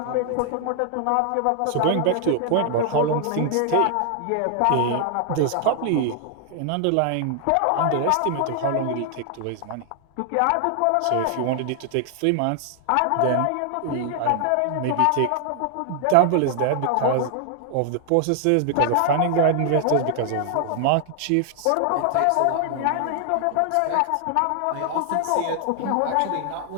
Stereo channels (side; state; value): both; different; correlation 0.00